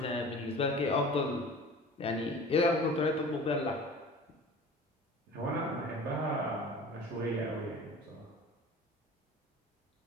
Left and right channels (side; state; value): both; normal; correlation 0.41